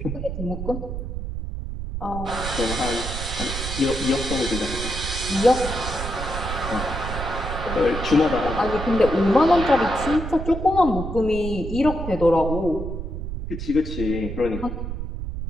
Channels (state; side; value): noise; right; rumble, 6 dB below the sound